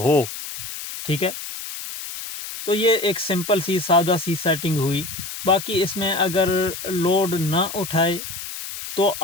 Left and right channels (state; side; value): noise; left; hiss, 9 dB below the sound